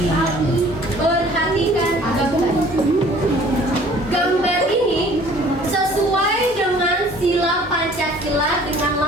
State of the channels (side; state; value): both; normal; correlation 0.52